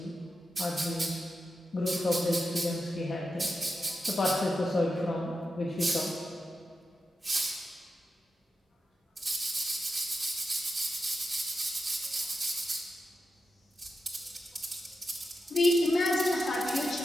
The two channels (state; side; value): normal; both; correlation 0.89